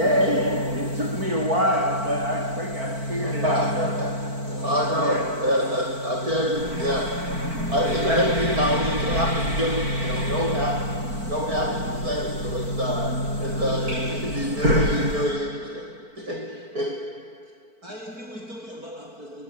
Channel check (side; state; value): left; late; 4.5 ms